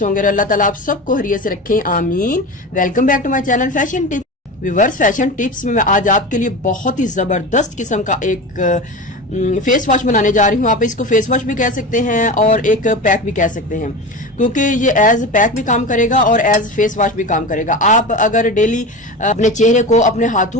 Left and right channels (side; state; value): both; normal; correlation 0.27